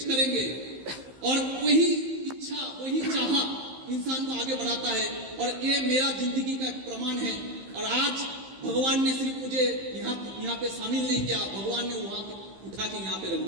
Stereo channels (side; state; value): left; late; 15 ms